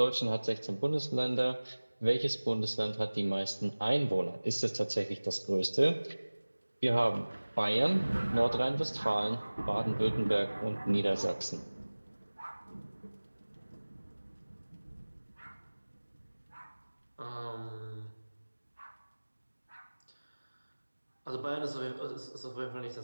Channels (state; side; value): inverted; both; correlation -1.00